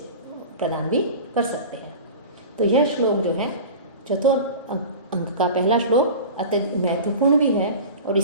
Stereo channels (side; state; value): both; inverted; correlation -0.35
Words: प्रदान भी कर सकते हैं। तो यह श्लोक जो है चतुर्थ अंक का पहला श्लोक अत्यधिक महत्वपूर्ण भी है, और